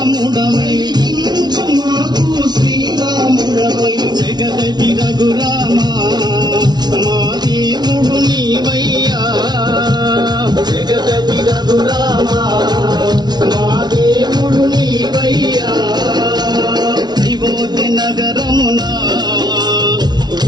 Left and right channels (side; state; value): left; late; 0.20 ms